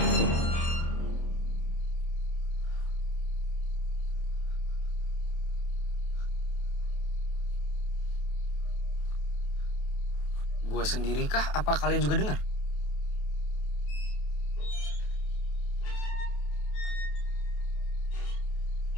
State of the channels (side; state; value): right; late; 28 ms